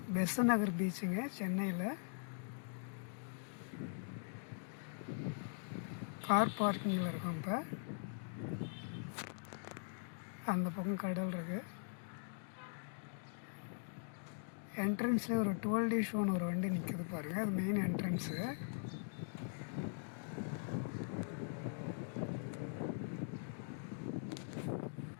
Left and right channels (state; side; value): silent; right; digital silence